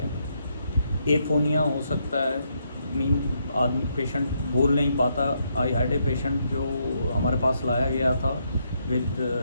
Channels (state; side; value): inverted; both; correlation -0.77